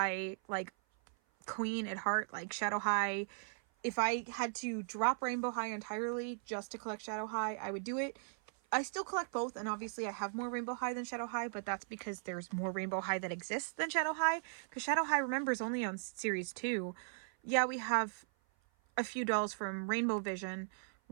like, queen at heart. Like, Shadow High, if I had to drop Rainbow High entirely just to collect Shadow High, I would do it. I still collect both, and obviously I have more Rainbow High than Shadow High, but that's because there's more Rainbow High that exists than Shadow High, because Shadow High, remember, is only on Series 2. Yeah, we have a few dolls from Rainbow Vision,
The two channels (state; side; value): silent; left; 52 dB below the other